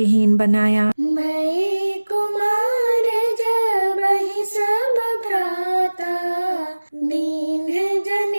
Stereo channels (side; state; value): both; inverted; correlation -1.00